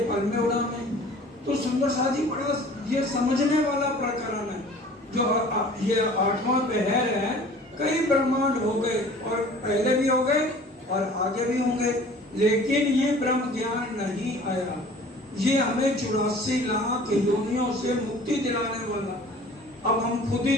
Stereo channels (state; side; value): normal; both; correlation 0.47